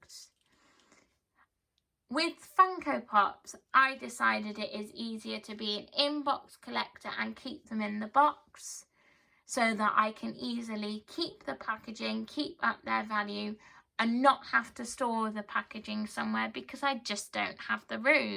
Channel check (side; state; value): both; identical; correlation 1.00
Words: With Funko Pops, I decided it is easier to be an in-box collector and keep them in the box so that I can easily keep the packaging, keep up their value, and not have to store the packaging somewhere because I just don't have the